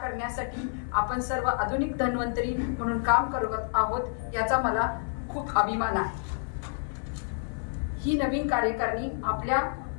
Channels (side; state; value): right; silent; 59 dB below the other